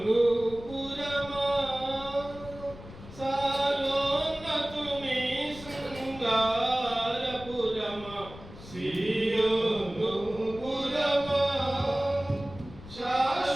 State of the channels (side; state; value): left; noise; rumble, 16 dB below the sound